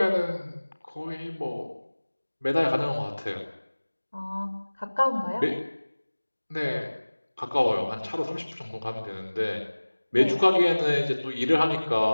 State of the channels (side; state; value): both; inverted; correlation -1.00